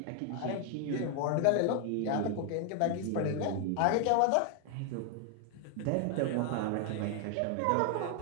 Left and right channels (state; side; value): different; both; correlation 0.00